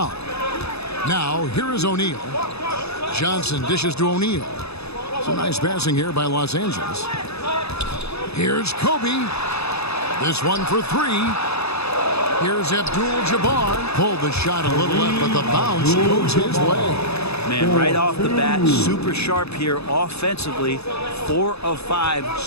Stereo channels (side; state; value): right; late; 0.79 ms